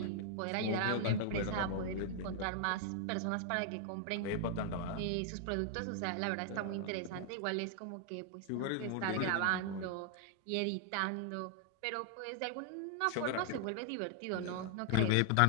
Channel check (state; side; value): different; both; correlation 0.00